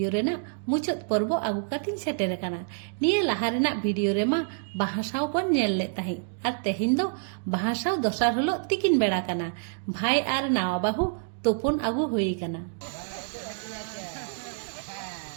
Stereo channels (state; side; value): silent; left; digital silence